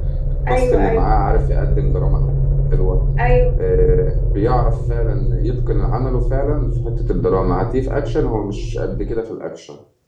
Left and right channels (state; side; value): identical; both; correlation 1.00